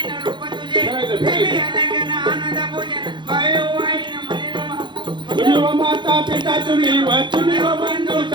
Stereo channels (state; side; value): late; left; 0.23 ms